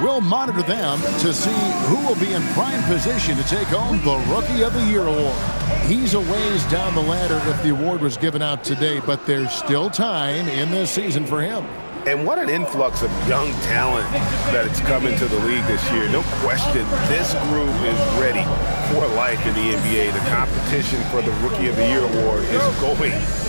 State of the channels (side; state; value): both; inverted; correlation -1.00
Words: we'll monitor them to see who will be in prime position to take home the Rookie of the Year award. He's a ways down the ladder if the award was given out today, but there's still time in this season for him. And what an influx of young talent that it's come into the league this year. No question, this group is ready for life in the NBA. The competition for the Rookie of the Year award is going